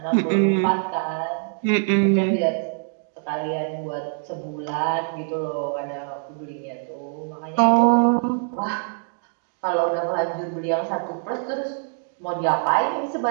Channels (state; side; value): silent; left; 63 dB below the other